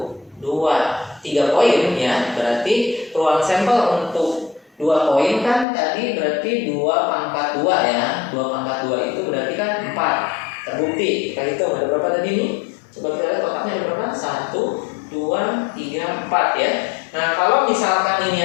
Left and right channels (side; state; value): right; drops out; at 5.7 s